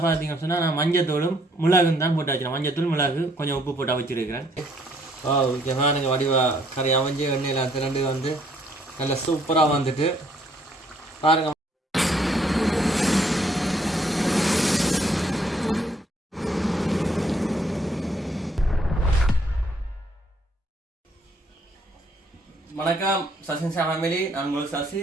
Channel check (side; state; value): both; normal; correlation 0.66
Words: பார்த்தீங்கன்னு சொன்னால் நான் மஞ்சத்தூளும் மிளகும் தான் போட்டு வச்சுருக்கேன். மஞ்சத்தூள் மிளகு கொஞ்சம் உப்பு போட்டு வச்சுருக்கிறேன். ஓகே பாருங்க வடிவா கறி அமைஞ்சு எண்ணெயில் திரண்டு வந்து நல்லா சூப்பராக வந்துட்டு பாருங்க. வணக்கம் SasiNisha Family, நான் உங்கள் சசி.